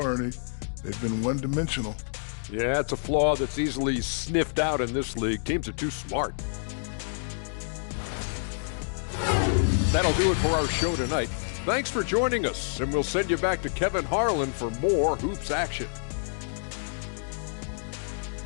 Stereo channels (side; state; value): right; silent; digital silence